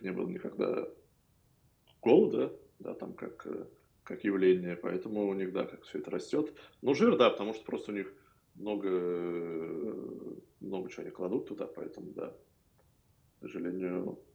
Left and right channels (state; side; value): identical; both; correlation 1.00